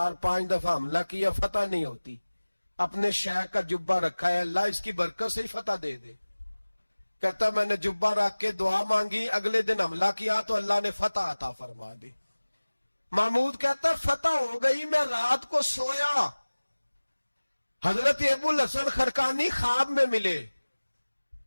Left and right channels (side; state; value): both; inverted; correlation -1.00